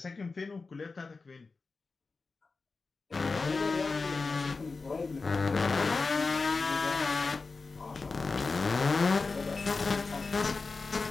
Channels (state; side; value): quieter; right; 4.1 dB